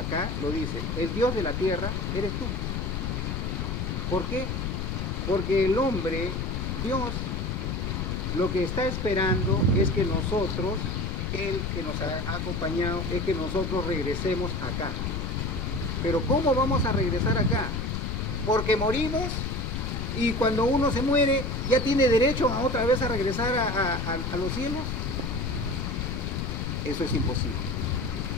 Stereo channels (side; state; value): left; noise; rumble, 2 dB below the sound